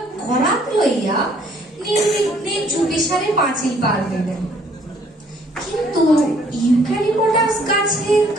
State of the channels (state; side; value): normal; both; correlation 0.62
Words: করাত লইয়া নির্বিঘ্নে চুপিসারে পাঁচিল পার হইলেন। কিন্তু ইউক্যালিপটাস গাছের